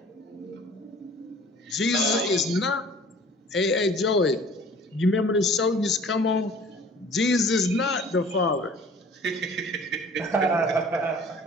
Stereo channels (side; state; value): both; normal; correlation 0.49